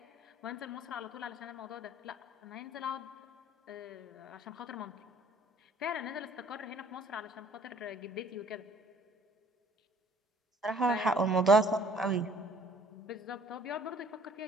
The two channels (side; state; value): both; normal; correlation 0.57